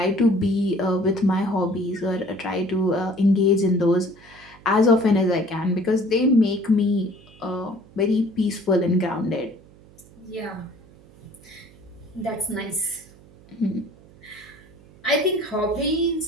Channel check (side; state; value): right; noise; hum, 25 dB below the sound